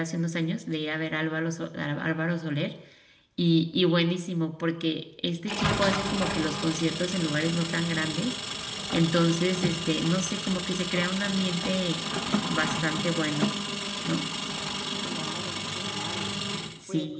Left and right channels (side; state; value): both; identical; correlation 1.00